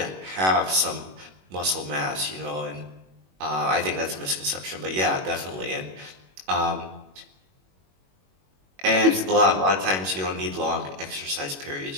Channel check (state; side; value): late; left; 21 ms